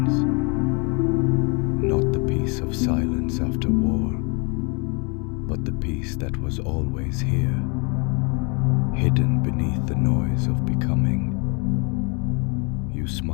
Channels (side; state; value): right; quieter; 32.6 dB